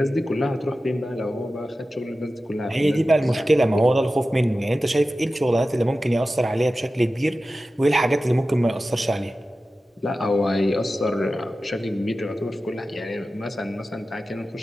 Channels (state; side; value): normal; both; correlation 0.94